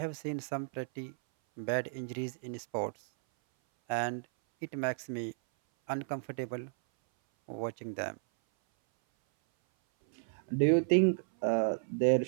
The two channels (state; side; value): silent; left; 56 dB below the other